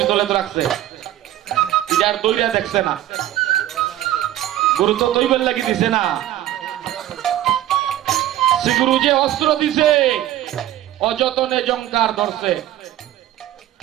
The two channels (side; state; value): left; quieter; 13.3 dB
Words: তোলে তো রাখছে, এটা আর দৈরা দেখছে না। গুরু তো দৈবের লাগি দিছে না, শ্রী গুরু যে অস্ত্র দিছে অযতনে জঙ্কার ধরছে,